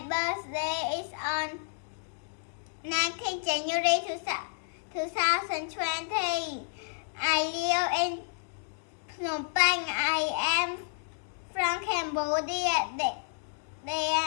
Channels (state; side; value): silent; right; digital silence